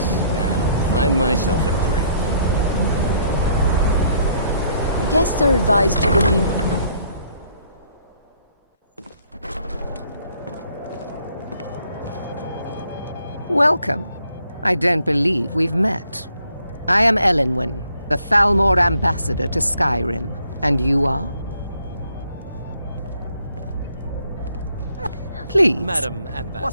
Now, find myself a drink. Guests are advised to remain... Welcome. I don't believe we've met. I am Elenwen, the Thalmor ambassador to Skyrim. And you are? Please. Madam Ambassador.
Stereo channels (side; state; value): both; inverted; correlation -0.67